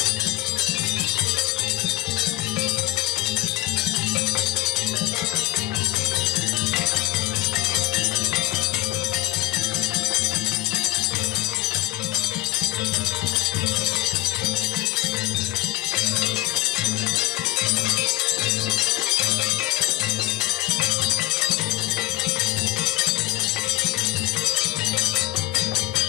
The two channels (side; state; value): right; quieter; 18.4 dB